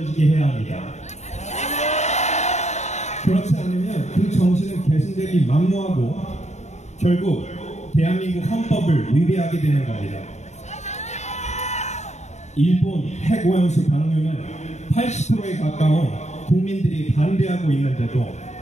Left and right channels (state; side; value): late; right; 0.33 ms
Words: 해야 합니다. 그렇지 않으면 그 정신은 계승되기 만무하고 결국 대한민국 헌법을 위배하게 되는 겁니다. 일본 핵오염수 방류는 80%에 가까운 국민들이 반대하고 있는데도